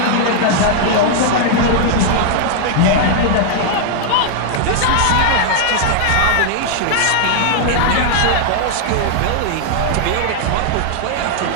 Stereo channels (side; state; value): both; different; correlation 0.00